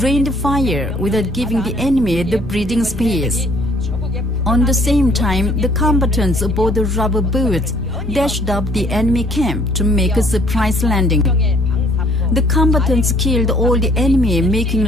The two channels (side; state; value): both; normal; correlation 0.61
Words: rained fire without giving the enemy the breathing space. On the same time, the combatants aboard the rubber boats dashed up the enemy camp to make a surprise landing. The combatants killed all the enemy, making